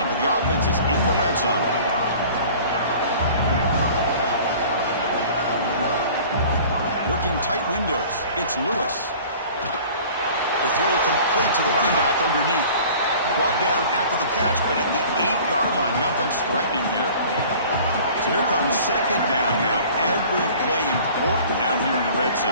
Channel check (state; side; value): inverted; both; correlation -0.46